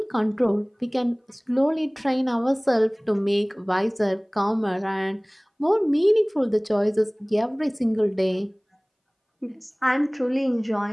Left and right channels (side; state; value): both; identical; correlation 1.00